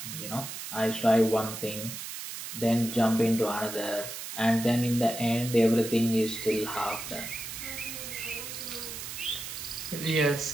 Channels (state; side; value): noise; right; hiss, 8 dB below the sound